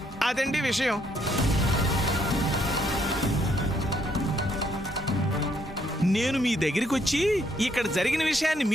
అదండి విషయం. నేను మీ దగ్గరికి వచ్చి ఇక్కడ జరిగిన విషయాన్ని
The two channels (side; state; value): both; normal; correlation 0.71